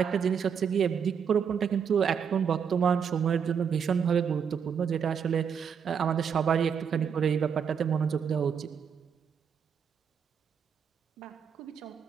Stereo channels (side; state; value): left; quieter; 7.1 dB